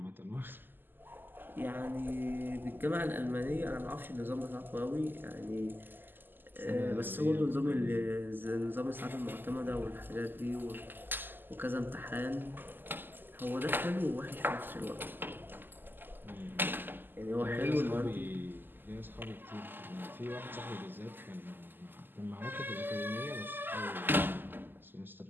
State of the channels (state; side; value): late; left; 0.092 ms